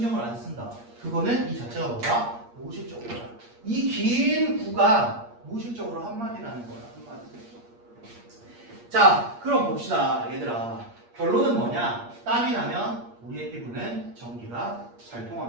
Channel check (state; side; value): late; left; 8.5 ms